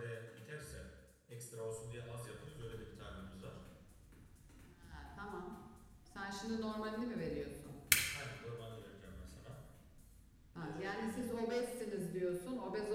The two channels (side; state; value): both; identical; correlation 1.00